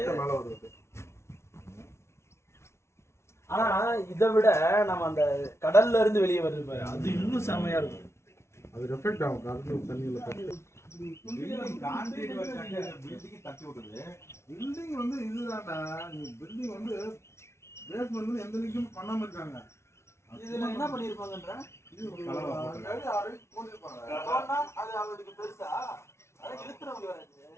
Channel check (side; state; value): right; late; 0.13 ms